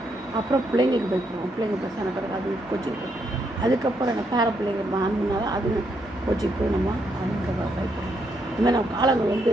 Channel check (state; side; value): normal; both; correlation 0.77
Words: அப்புறம் பிள்ளைங்களுக்கு பயப்படுவோம், பிள்ளைங்க பெருசான பிறகு அது கோச்சிக்கு. அதுக்கப்புறம் என்ன பேர பிள்ளைங்க ஆண்டுனால அது கோச்சிக்கு போய் நம்ம அதுக்கு பயப்படும். இதுமாதிரி நம்ம